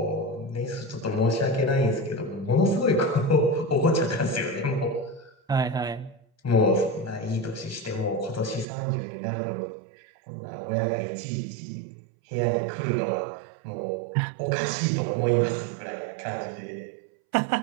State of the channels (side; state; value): left; drops out; at 8.7 s